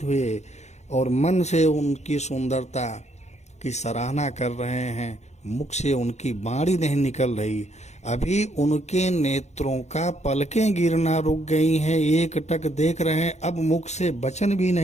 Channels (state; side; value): late; right; 0.33 ms